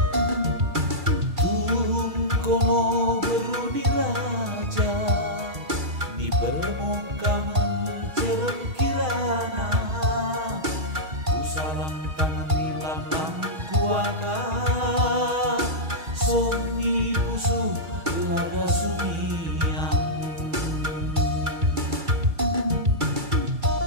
Tuhun kono beruni raja, di permukaan cerem kirana. Ku salam tangan nilam lam kuaka, somi pusu laga sumiang.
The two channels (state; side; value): late; left; 6.3 ms